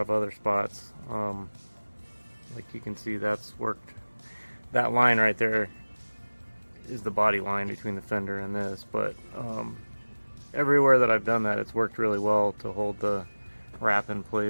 of other spots. Like you can see, that's worked. That line right there is the body line between the fender and this, but everywhere that I've done that, it's worked really well to hold the wrap in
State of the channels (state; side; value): inverted; both; correlation -1.00